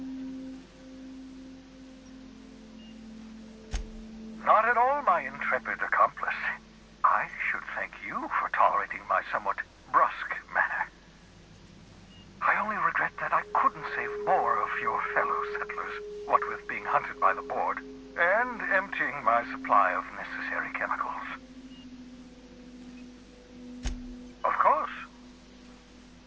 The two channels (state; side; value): identical; both; correlation 1.00